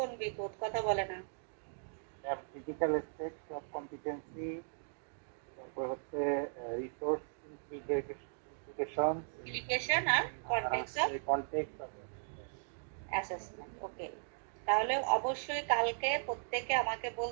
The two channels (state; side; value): silent; left; digital silence